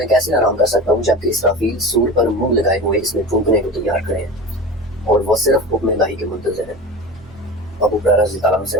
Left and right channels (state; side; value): noise; right; rumble, 27 dB below the sound